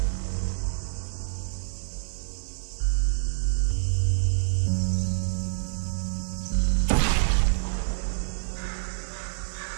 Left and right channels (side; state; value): left; silent; digital silence